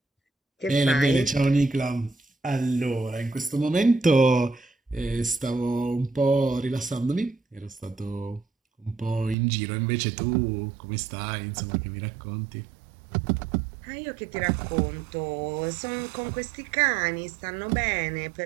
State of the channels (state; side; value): drops out; left; at 9.3 s